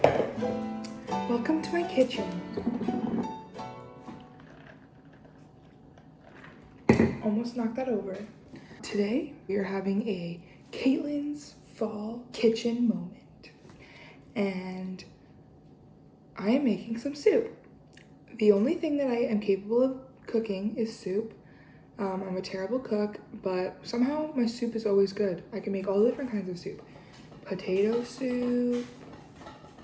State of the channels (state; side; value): identical; both; correlation 1.00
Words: welcome to my kitchen. Almost knocked that over. Today, we are having a Caitlin's Fall Kitchen moment. And I am making some soup. The only thing that I am capable of cooking is soup. I'm a terrible cook, but somehow my soup is always good. I can make all different kinds of soup. Potato soup.